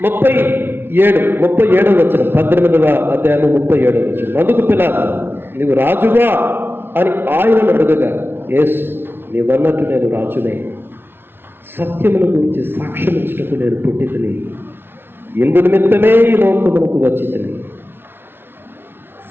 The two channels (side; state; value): left; late; 0.11 ms